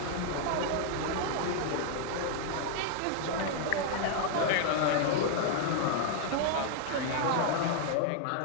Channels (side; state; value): both; different; correlation 0.00